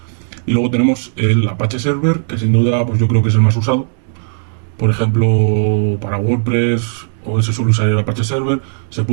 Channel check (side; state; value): left; silent; digital silence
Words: Y luego tenemos el Apache Server, que sin duda pues yo creo que es el más usado. Por ejemplo, para WordPress, o se suele usar el Apache Server. Se